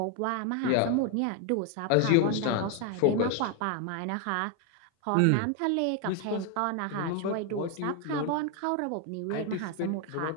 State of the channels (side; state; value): both; different; correlation 0.01